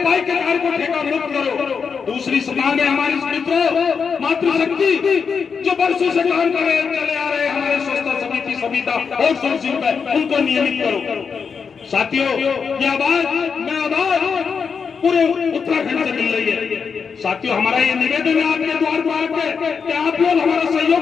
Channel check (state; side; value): quieter; right; 5.9 dB